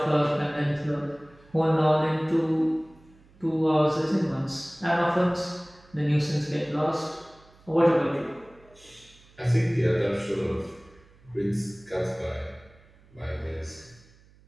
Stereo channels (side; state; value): right; noise; hum, 28 dB below the sound